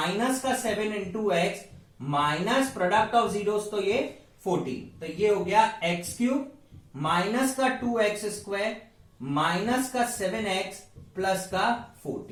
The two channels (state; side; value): identical; both; correlation 1.00